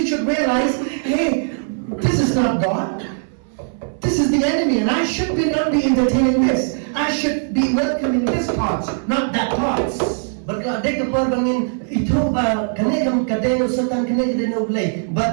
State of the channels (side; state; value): left; silent; 62 dB below the other